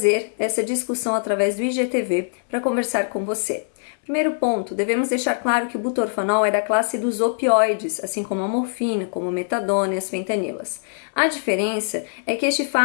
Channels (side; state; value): right; silent; 62 dB below the other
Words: essa discussão através do IGTV para conversar com você. Primeiro ponto, devemos deixar claro que o butorfanol é da classe dos opioides, assim como a morfina, como a metadona e as fentanilas. A diferença é que este